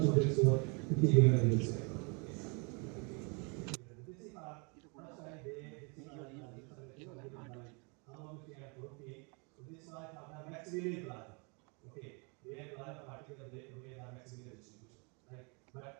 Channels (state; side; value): quieter; left; 33.4 dB